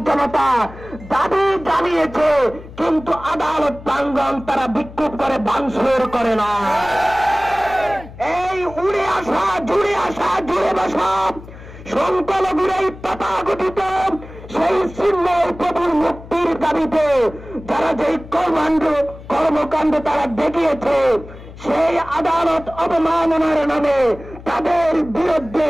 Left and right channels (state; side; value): noise; left; hum, 16 dB below the sound